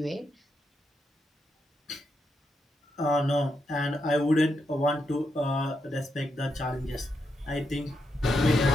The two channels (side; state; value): both; normal; correlation 0.82